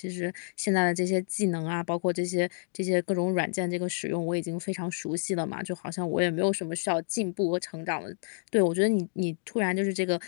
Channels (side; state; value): right; silent; digital silence